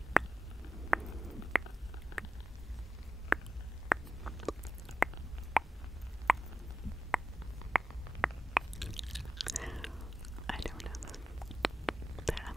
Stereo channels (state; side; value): normal; both; correlation 0.94